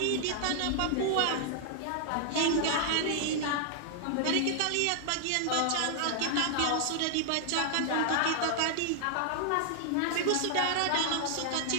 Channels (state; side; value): different; both; correlation 0.00